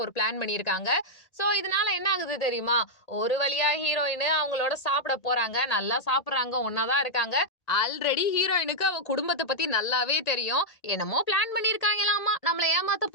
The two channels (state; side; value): late; right; 1.8 ms